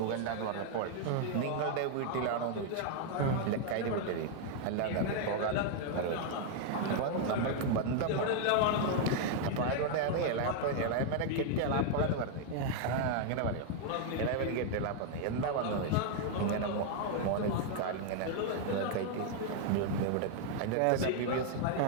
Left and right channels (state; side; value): different; both; correlation 0.00